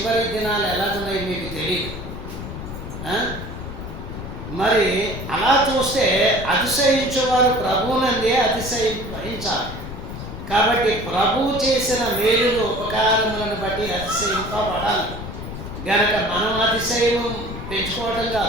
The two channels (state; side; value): noise; left; rumble, 9 dB below the sound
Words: దినాలు ఎలాగున్నాయి మీకు తెలియదు. మరి అలా చూస్తే అతిశయించేవారు ప్రభువునందే అతిశయించాలి. కాబట్టి ప్రభువు చేసిన మేలులు, ఉపకారములను బట్టి అతిశయింపబడాలి. గనక మనం అతిశయం పెంచుకోవటం